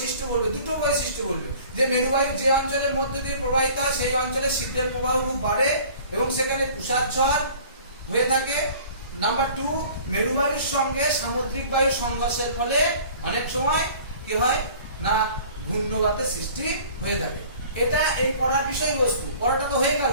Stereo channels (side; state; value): both; inverted; correlation -0.48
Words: বলবে, দুটো বৈশিষ্ট্য বলবে। যে মেরুবায়ু যে অঞ্চলের মধ্যে দিয়ে প্রবাহিত হয় সেই অঞ্চলে শীতের প্রবাহ খুব বাড়ে এবং সেখানে তুষার ঝড় হয়ে থাকে। নাম্বার 2, মেরুবায়ুর সঙ্গে সামুদ্রিক বায়ুর সংঘর্ষের ফলে অনেক সময় কি হয় না ঘূর্ণবাতের সৃষ্টি হয়ে থাকে। এটা এই পড়ার বিষয়বস্তু। পড়াটা তো হয়ে গেল।